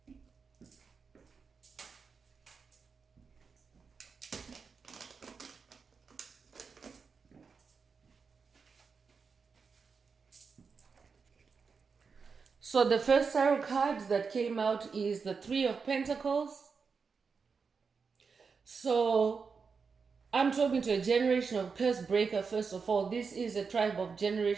So the first tarot card that came out is the Three of Pentacles. So I'm talking to a generational curse breaker. First of all, this is a tribe of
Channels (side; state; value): left; quieter; 5.3 dB